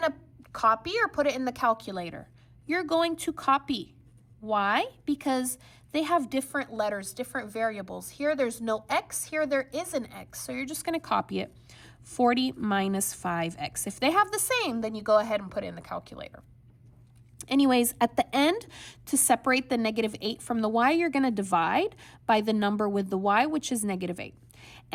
to copy or put it in the calculator? You're going to copy. Why? Because they have different letters, different variables. Here, there's no x. Here, there is an x. So you're just going to copy it. 40 minus 5x. If they have the same, then you go ahead and put it in the calculator. Anyways, at the end, to separate the negative 8 from the y, you're going to divide by the number with the y, which is negative 8.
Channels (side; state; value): both; identical; correlation 1.00